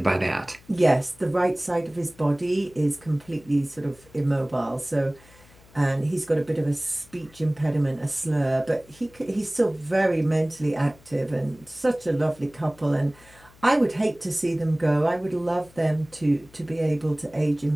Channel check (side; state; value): left; noise; hum, 26 dB below the sound